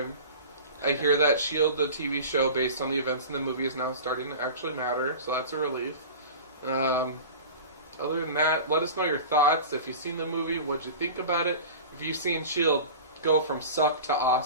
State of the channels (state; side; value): inverted; both; correlation -0.34